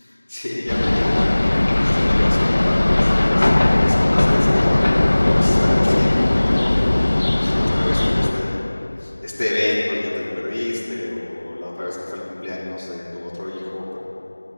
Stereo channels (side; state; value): both; inverted; correlation -1.00